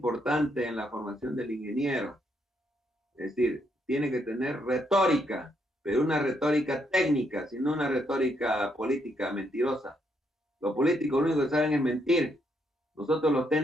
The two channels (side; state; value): both; normal; correlation 0.75